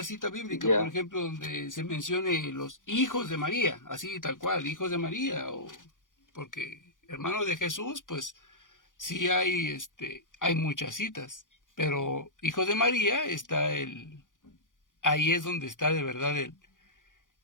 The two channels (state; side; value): late; right; 0.88 ms